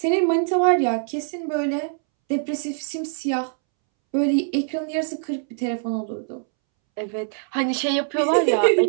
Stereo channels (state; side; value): silent; left; 63 dB below the other